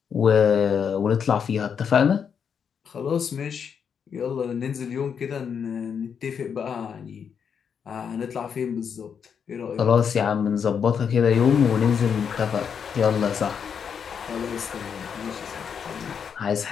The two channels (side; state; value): right; quieter; 7.1 dB